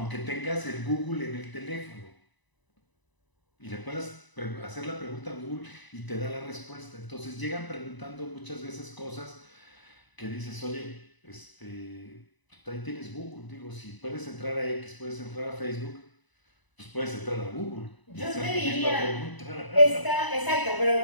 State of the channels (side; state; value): right; late; 1.0 ms